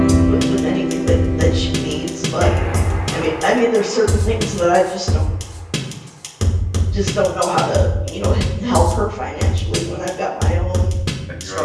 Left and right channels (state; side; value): identical; both; correlation 1.00